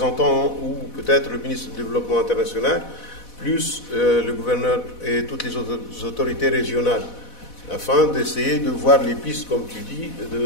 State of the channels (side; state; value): right; late; 4.1 ms